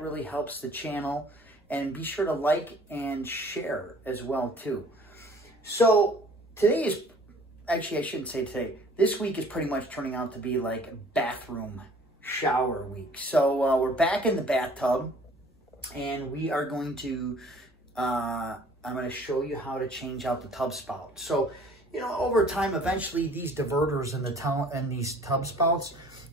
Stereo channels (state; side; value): normal; both; correlation 0.53